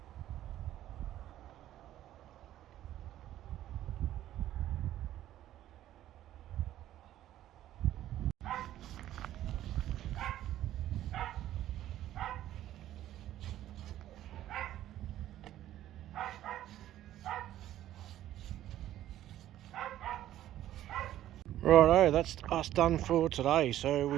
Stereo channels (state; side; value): quieter; left; 12.9 dB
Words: Righto, that's us done for today. So